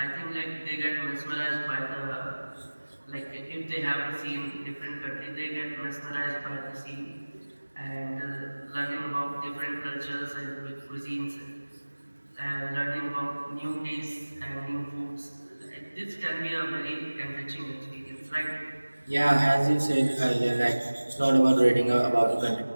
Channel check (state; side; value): inverted; both; correlation -1.00